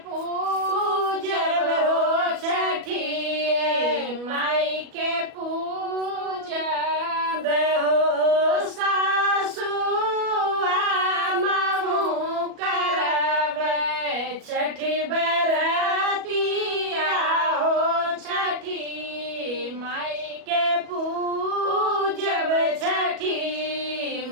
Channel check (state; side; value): late; left; 37 ms